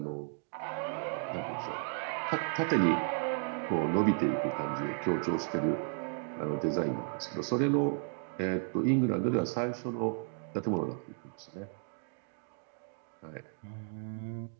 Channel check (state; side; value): silent; left; 55 dB below the other